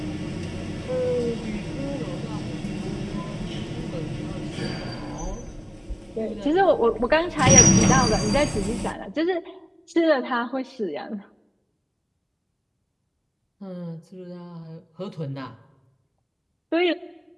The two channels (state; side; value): identical; both; correlation 1.00